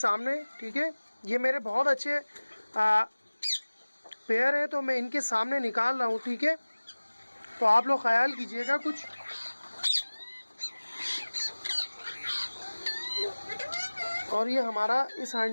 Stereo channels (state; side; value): inverted; both; correlation -1.00